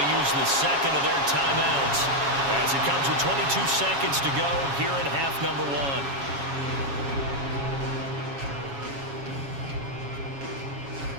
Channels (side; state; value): left; late; 7.2 ms